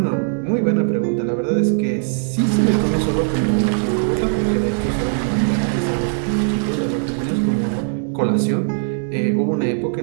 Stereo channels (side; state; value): left; silent; digital silence